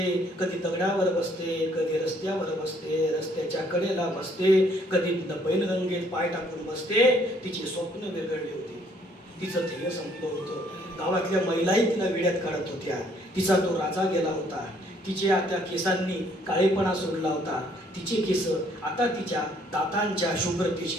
कधी दगडावर बसते, कधी रस्त्यावर बसते, रस्त्याच्या कडेला बसते, कधी पैलगंगेत पाय टाकून बसते. तिची स्वप्न विरघळली होती, तिचं ध्येय संपलं होतं. गावातल्या महिलाही तिला वेड्यात काढत होत्या. तिचा तो राजा गेला होता, तिच्या त्या केसांनी काळेपणा सोडला होता. तिचे केस आता तिच्या दातांच्या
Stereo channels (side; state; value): both; normal; correlation 0.64